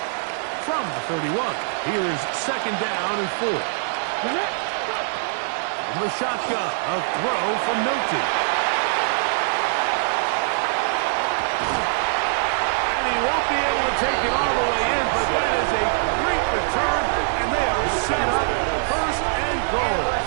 From the 31, here's second down and 4. From the shotgun, a throw from Milton. He won't be able to take it all the way in, but that is a great return, and they are set up first and goal.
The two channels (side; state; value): left; silent; digital silence